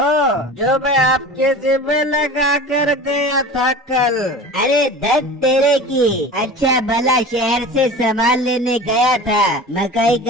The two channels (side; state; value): both; normal; correlation 0.35